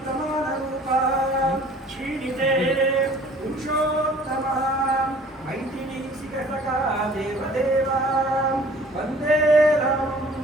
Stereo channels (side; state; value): both; normal; correlation 0.51